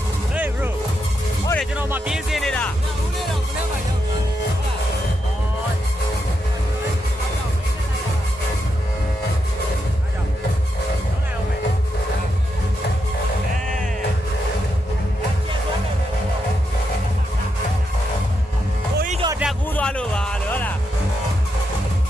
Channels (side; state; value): both; normal; correlation 0.83